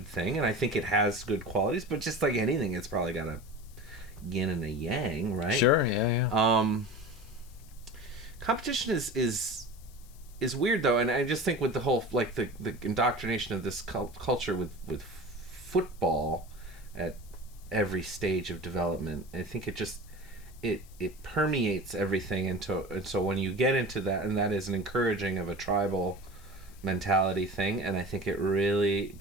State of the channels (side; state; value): left; noise; hiss, 25 dB below the sound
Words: thing, and I think it has good qualities, but just like anything, it's probably got a yin and a yang, right? Sure, yeah. Competition is weird though, and I just think with the whole like the indoctrination of this culture with football at every stage of development, I think it permeates everything, and so when you get into that, and that is an encouraging of a tribal mentality thing, and I think it really